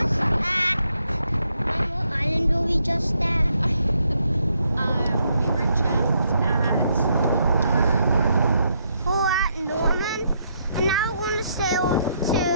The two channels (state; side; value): inverted; both; correlation -0.75